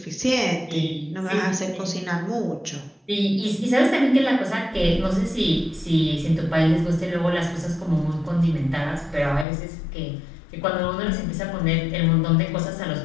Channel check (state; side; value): drops out; right; at 9.5 s